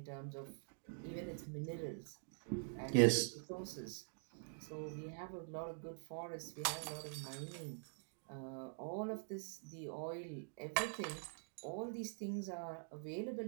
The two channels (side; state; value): left; silent; digital silence